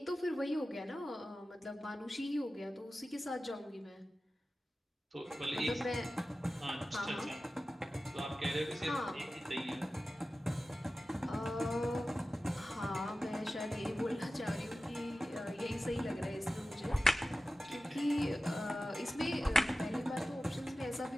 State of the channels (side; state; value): both; normal; correlation 0.95